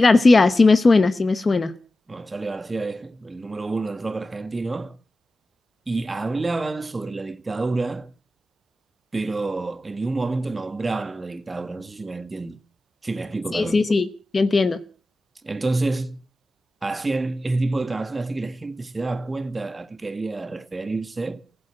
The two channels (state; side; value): normal; both; correlation 0.94